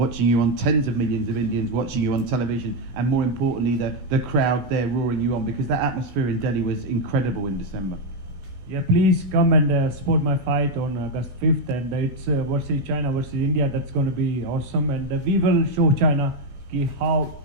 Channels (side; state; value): left; late; 16 ms